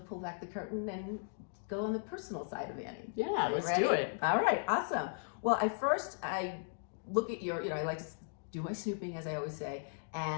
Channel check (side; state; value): right; silent; digital silence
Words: pull back the curtain and go on the personal side of Annie. Yeah, let's do it. All right, awesome. Well, I look at your, I like to do my snooping, as I always say,